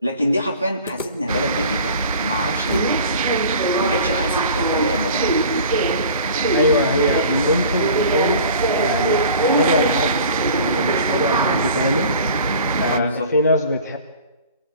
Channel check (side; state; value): both; inverted; correlation -0.44